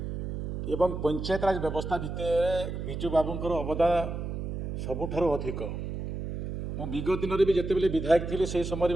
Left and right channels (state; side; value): noise; right; hum, 4 dB below the sound